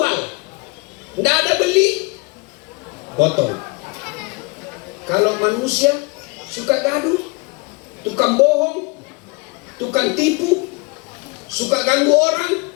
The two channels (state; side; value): quieter; right; 28.0 dB